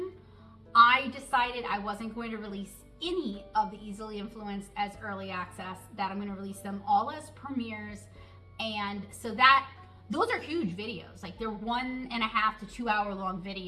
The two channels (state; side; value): identical; both; correlation 1.00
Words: I decided I wasn't going to release any of the Easily Influenced as early access, that I'm going to release them all as premieres. And so those are huge videos. Like they're 1.5 to 2 hour long